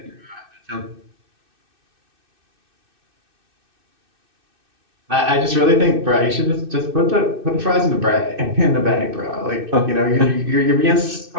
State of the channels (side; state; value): left; late; 2.6 ms